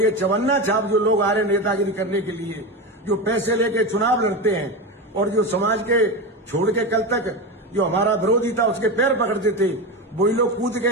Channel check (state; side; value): normal; both; correlation 0.19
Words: चवन्ना छाप जो लोग आ रहे नेतागिरी करने के लिए, जो पैसे लेके चुनाव लड़ते हैं और जो समाज के छोड़ के कल तक जो हमारा विरोधी था उसके पैर पकड़ते थे, वही लोग कूद